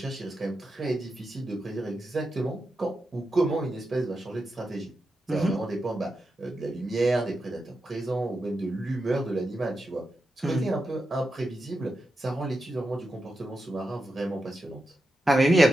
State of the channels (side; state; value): both; normal; correlation 0.89